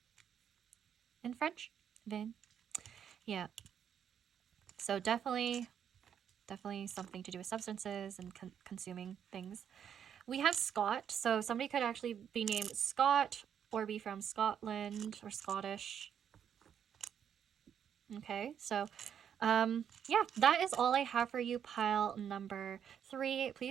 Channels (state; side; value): quieter; left; 8.6 dB